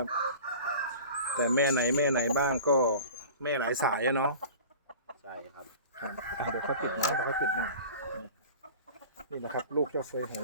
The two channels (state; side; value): inverted; both; correlation -0.39